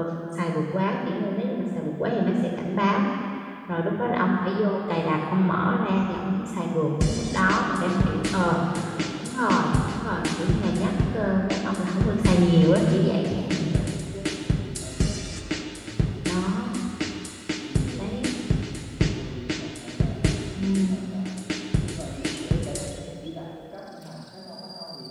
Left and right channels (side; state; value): both; identical; correlation 1.00